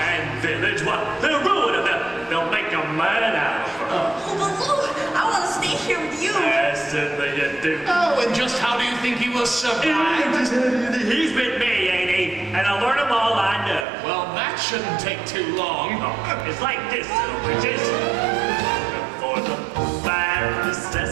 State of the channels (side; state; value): left; drops out; at 13.9 s